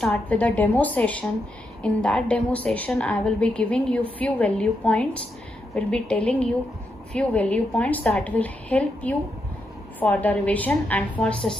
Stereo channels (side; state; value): both; normal; correlation 0.83